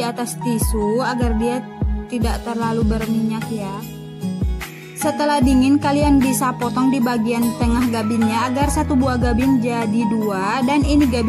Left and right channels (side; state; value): both; identical; correlation 1.00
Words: atas tisu agar dia tidak terlalu berminyak ya. Setelah dingin, kalian bisa potong di bagian tengah gabinnya agar satu buah gabin jadi 2. Dan ini